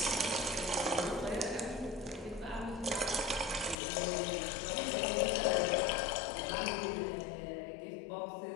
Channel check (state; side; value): drops out; right; at 3.8 s